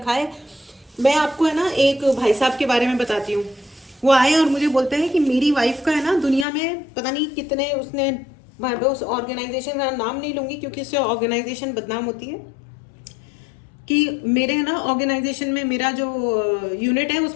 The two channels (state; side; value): drops out; right; at 6.5 s